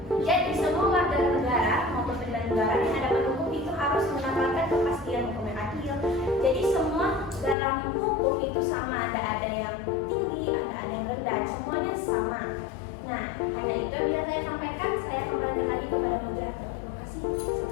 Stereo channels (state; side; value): drops out; right; at 7.6 s